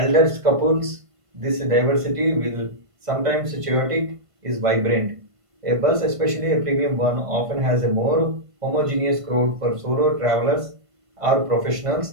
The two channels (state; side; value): late; left; 1.5 ms